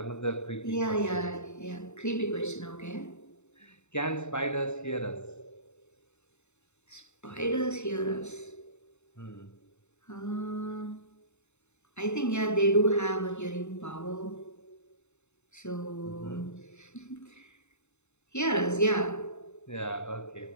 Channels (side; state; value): right; late; 0.82 ms